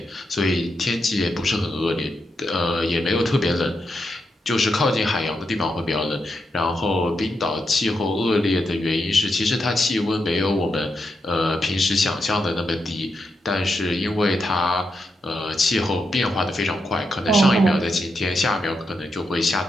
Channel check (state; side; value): normal; both; correlation 0.84